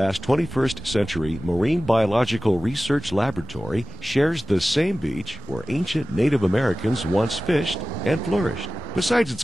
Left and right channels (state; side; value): normal; both; correlation 0.95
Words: 21st century marine biological research laboratory shares the same beach where ancient Native Americans once fished and flourished. Besides its